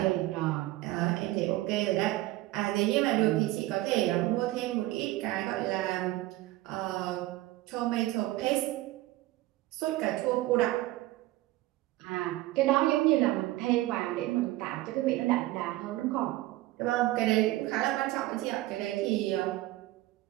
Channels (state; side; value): quieter; left; 17.5 dB